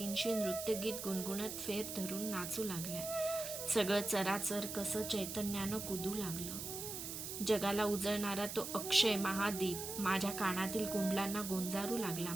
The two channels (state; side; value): noise; right; hiss, 6 dB below the sound